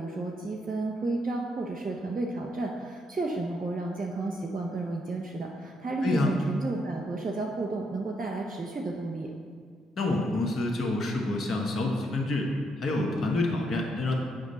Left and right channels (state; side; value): normal; both; correlation 0.77